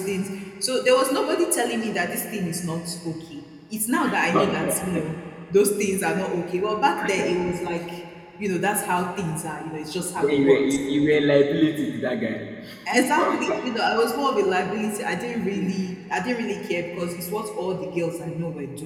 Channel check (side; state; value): both; identical; correlation 1.00